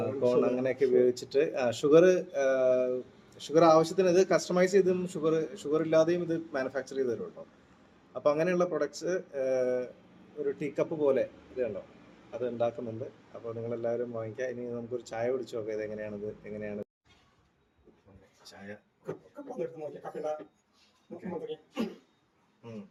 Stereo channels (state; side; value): identical; both; correlation 1.00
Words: കോൺ അങ്ങനെയൊക്കെ ഉപയോഗിച്ചിട്ട് ഷുഗർ ആവശ്യത്തിന് ഇത് കസ്റ്റമൈസ് ചെയ്തും ഷുഗർ ഇല്ലാതെയും ഇത് മാനുഫാക്ചർ ചെയ്ത് തരുമല്ലോ. അപ്പോൾ അങ്ങനെയുള്ള പ്രൊഡക്ട്സ് ഒരു ടീ കപ്പ് പോലെ ഇതുണ്ടോ അത് ഉണ്ടാക്കുന്നുണ്ട്. അപ്പോൾ നിങ്ങളെല്ലാവരും വാങ്ങിക്കുക. ഇനി നമുക്കൊരു ചായ കുടിച്ചു നോക്കാം ഇത് എങ്ങനെയാണ് ചായ.